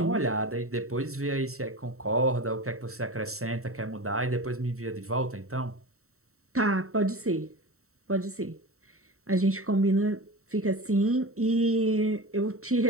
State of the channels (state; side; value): late; left; 0.64 ms